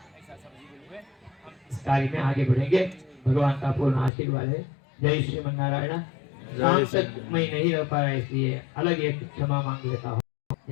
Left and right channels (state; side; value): drops out; right; at 4.1 s